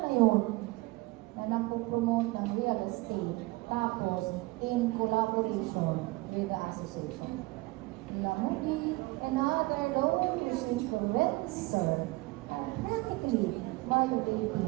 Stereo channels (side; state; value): left; quieter; 22.3 dB